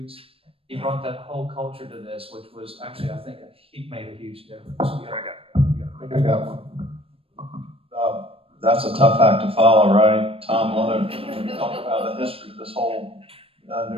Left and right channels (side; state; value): left; late; 0.27 ms